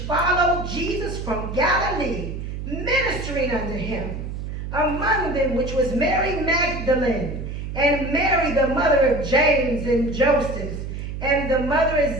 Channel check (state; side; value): noise; right; hum, 6 dB below the sound